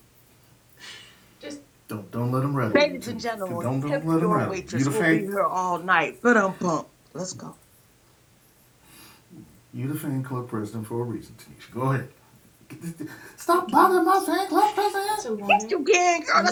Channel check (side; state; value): both; identical; correlation 1.00